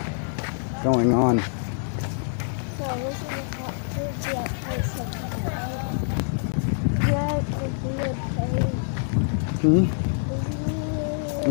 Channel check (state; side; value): silent; right; digital silence